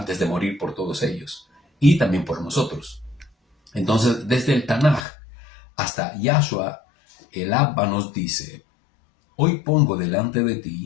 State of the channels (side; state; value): right; drops out; at 5.1 s